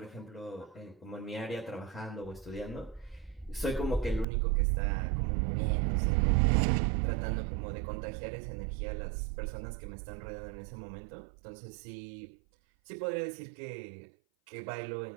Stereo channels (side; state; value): left; drops out; at 4.2 s